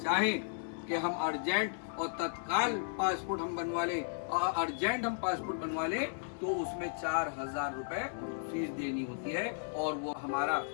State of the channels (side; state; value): right; silent; digital silence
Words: कि हम अर्जेंट और तत्काल पासपोर्ट हम बनवा लें, और अर्जेंट हम पासपोर्ट बनवा लें, तो उसमें 4000 रुपए फीस देनी होती है, और वो हमारा